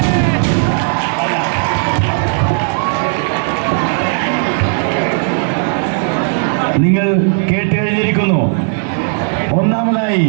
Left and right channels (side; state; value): left; silent; 59 dB below the other